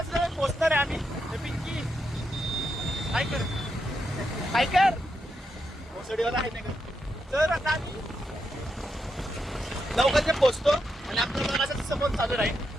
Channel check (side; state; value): both; normal; correlation 0.84